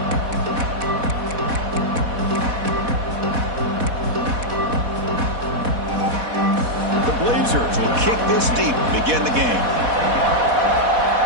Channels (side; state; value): left; late; 4.1 ms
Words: The Blazers will kick this deep to begin the game.